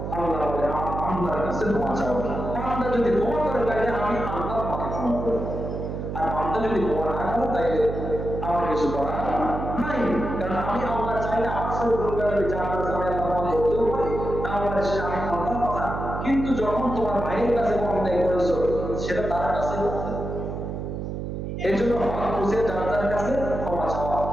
আল্লাহ বলে আল্লাহর কাছে ক্ষমা চাও। বান্দা যদি ক্ষমা করে তাইলে আমি আল্লাহ তোমাকে ক্ষমা করব, আর বান্দা যদি ক্ষমা না করে তাইলে আমার কিছু করার নাই। কারণ আমি আল্লাহ চাইলে আমার সাথে দুর্গার বিচার করতে আমি আল্লাহ করতেও পারি, না পারে সেটা আমি আল্লাহর কথা। কিন্তু যখন তোমার ভাইয়ের কাছে অন্যায় করেছো, সেটা তার কাছে করতে। এই জন্য হক বুঝে যার কাছে ক্ষমা চাওয়া।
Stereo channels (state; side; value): noise; right; hum, 5 dB below the sound